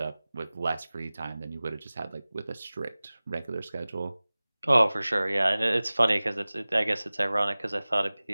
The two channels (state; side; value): inverted; both; correlation -0.99